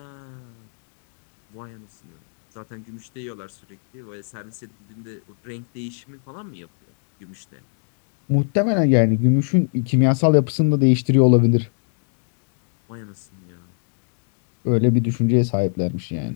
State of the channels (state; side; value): silent; right; digital silence